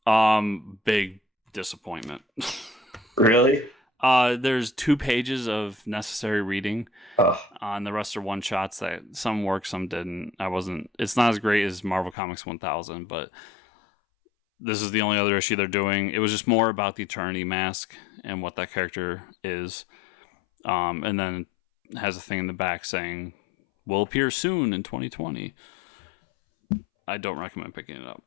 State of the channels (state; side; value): drops out; right; at 12.2 s